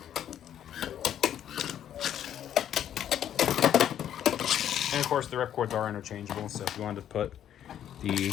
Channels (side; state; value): right; quieter; 10.3 dB